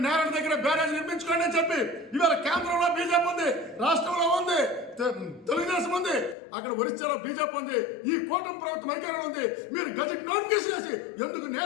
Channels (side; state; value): right; drops out; at 6.4 s